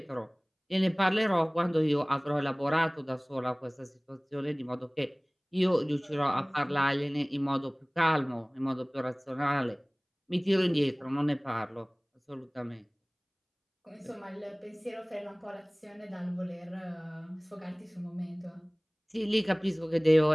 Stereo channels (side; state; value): both; identical; correlation 1.00